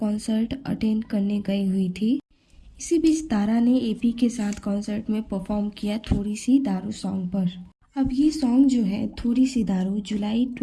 अटेंड करने गई हुई थी। इसी बीच तारा ने एपी के साथ कॉन्सर्ट में परफॉर्म किया थोड़ी सी दारू सॉन्ग पर। अब ये सॉन्ग जो है थोड़ी सी दारू जुलाई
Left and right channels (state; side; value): identical; both; correlation 1.00